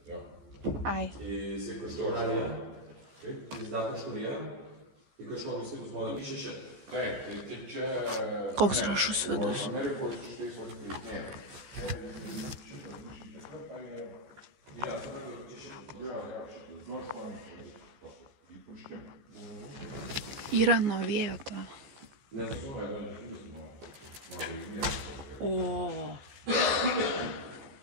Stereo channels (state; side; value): late; left; 14 ms